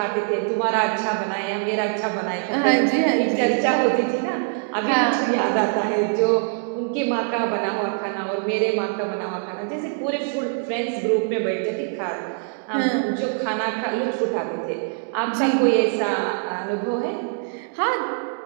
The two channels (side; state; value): left; silent; 57 dB below the other